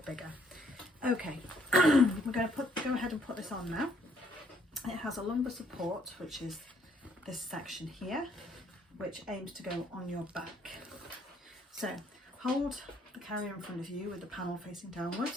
bigger. Okay, we're going to go ahead and put this on now. It has a lumbar support, which is this section here, which aims to go on your back. So hold the carrier in front of you with the panel facing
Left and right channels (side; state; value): both; normal; correlation 0.67